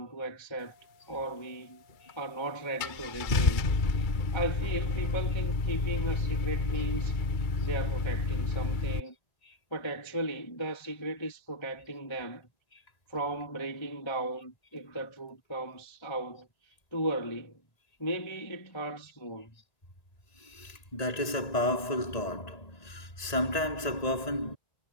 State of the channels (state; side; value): late; right; 1.8 ms